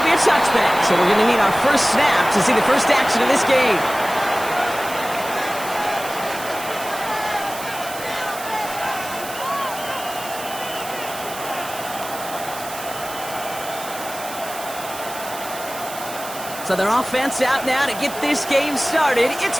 be a touchback, so we're going to need our first snap to see the first action of this game. So their offense out now to get this game started. It's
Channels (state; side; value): noise; right; hiss, 12 dB below the sound